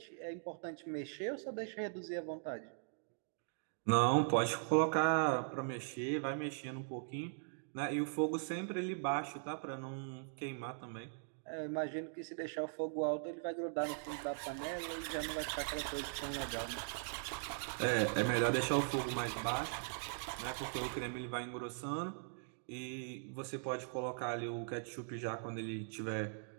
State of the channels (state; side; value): silent; left; digital silence